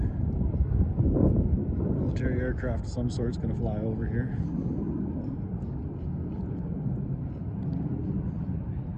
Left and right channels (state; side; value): identical; both; correlation 1.00